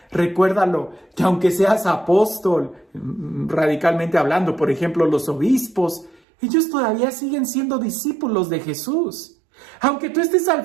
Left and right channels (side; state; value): left; drops out; at 6.2 s